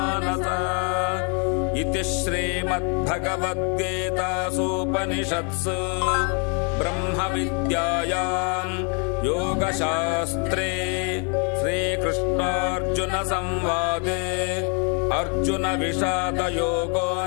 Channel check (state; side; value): quieter; right; 37.9 dB